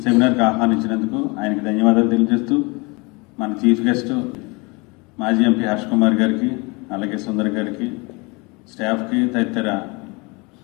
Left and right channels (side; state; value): right; quieter; 27.9 dB